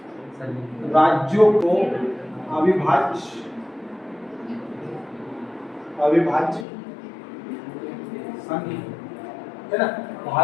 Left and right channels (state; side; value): drops out; right; at 6.7 s